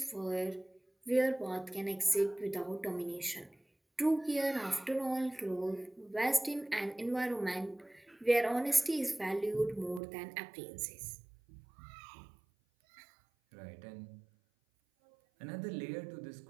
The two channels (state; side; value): drops out; left; at 10.0 s